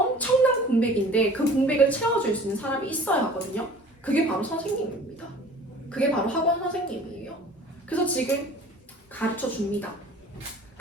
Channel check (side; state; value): both; normal; correlation 0.46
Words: 공백인데 그 공백을 채워줄 수 있는 사람이 있어야 하거든요. 그게 바로 선생님입니다. 그게 바로 학원 선생님이에요. 그래서 지금 가르쳐 줍니다.